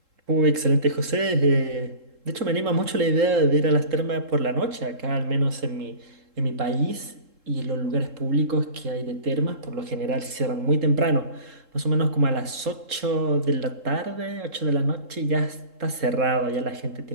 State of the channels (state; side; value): late; left; 3.7 ms